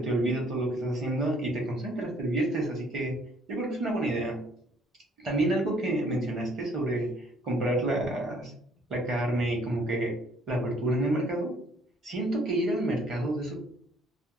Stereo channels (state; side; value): normal; both; correlation 0.62